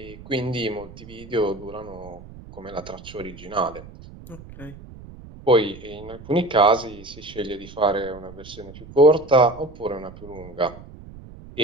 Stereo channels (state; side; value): noise; right; rumble, 17 dB below the sound